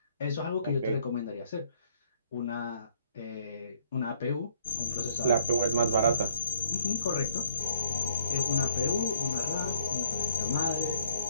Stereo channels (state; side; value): inverted; both; correlation -0.63